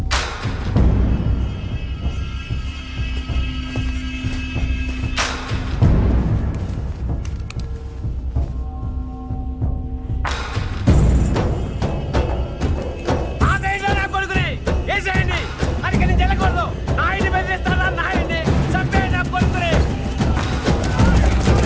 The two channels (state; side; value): identical; both; correlation 1.00